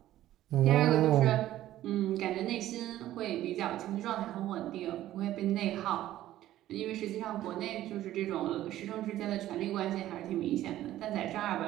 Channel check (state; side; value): quieter; left; 13.8 dB